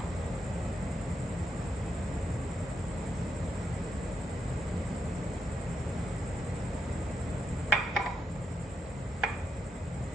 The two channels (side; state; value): both; normal; correlation 0.82